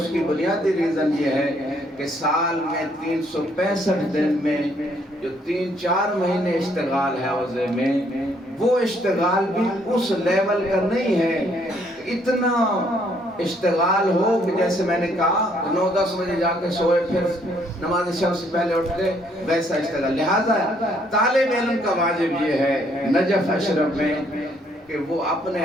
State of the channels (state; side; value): normal; both; correlation 0.67